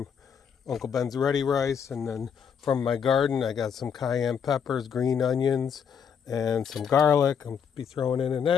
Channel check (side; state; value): right; quieter; 7.3 dB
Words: Uncle Ben's ready rice, and then from my garden I got some cayenne peppers, green onions, and some garlic. I'll be throwing in an